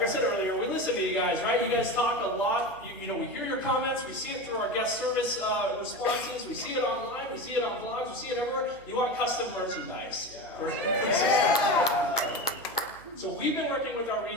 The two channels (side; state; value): right; noise; hum, 24 dB below the sound